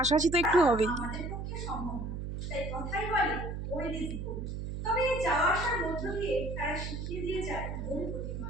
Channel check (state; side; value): noise; right; hum, 5 dB below the sound